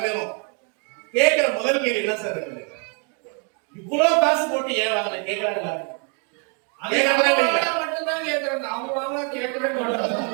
கேட்கிற முதல் கேள்வி என்ன சார் இருக்குது? இவ்வளவு காசு போட்டு ஏன் வாங்கின கேட்கறாங்களா?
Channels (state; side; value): quieter; left; 39.3 dB